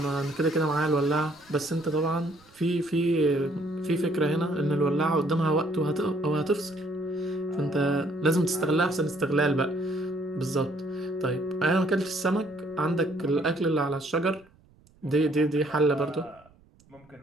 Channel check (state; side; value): noise; right; rumble, 29 dB below the sound